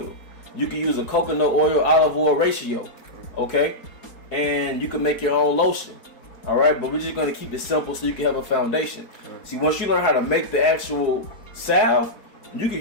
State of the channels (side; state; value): right; late; 4.7 ms